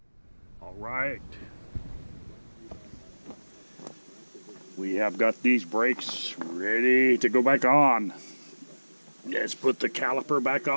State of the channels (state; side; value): inverted; both; correlation -1.00